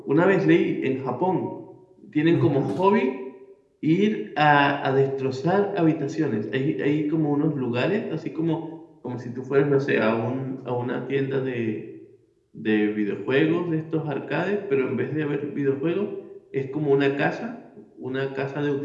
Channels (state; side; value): identical; both; correlation 1.00